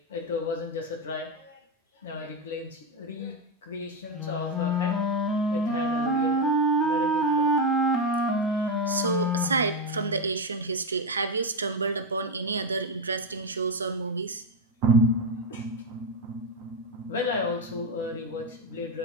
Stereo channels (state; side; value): normal; both; correlation 0.07